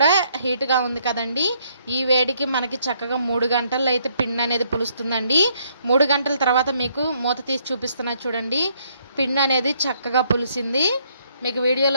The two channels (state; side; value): inverted; both; correlation -0.69